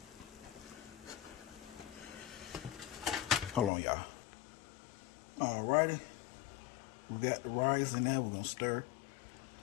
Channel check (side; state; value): right; drops out; at 3.7 s